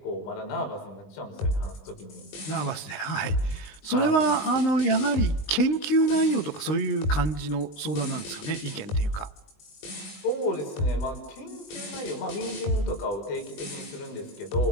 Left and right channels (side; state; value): right; late; 20 ms